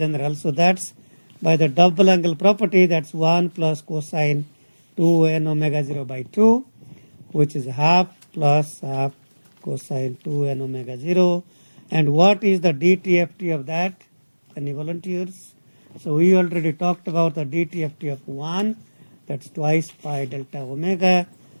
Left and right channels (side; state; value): both; inverted; correlation -1.00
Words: So that's by the double angle property, that's 1 plus cosine 2 n omega 0 by 2, which is half plus half cosine 2 n omega 0. And what is the DTFT of that? Any volunteers? So we already talked about the DTFT of 1, that's twice pi delta omega.